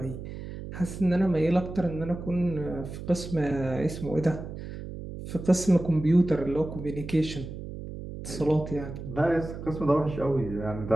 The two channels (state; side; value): noise; right; hum, 10 dB below the sound